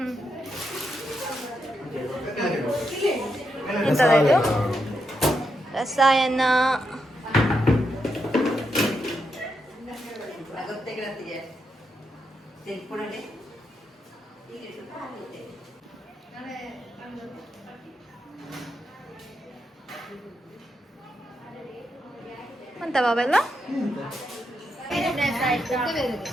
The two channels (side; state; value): both; normal; correlation 0.83